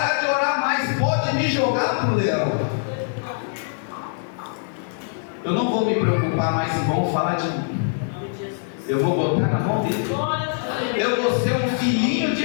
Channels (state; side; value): silent; right; 57 dB below the other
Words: de orar mais, pode me jogar para o leão. Eu não vou me preocupar mais se vão falar de mim. Eu vou botar na mão dele. Eu vou ser um filhinho